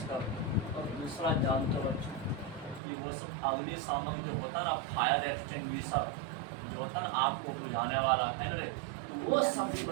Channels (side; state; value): left; drops out; at 2.8 s